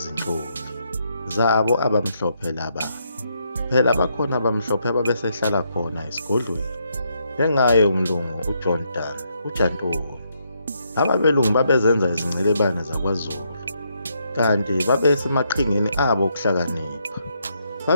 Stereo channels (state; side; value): inverted; both; correlation -0.76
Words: zabo abamhlophe laba. Phela bakhona abamhlophe ababesehlala khona esigodlweni, njengaye umlungu uJohn Dan, uJantoni. Ababelungu babezenza izingcilebane zakwaZulu, kanti babesemaqhingeni abo okuhlakanipha.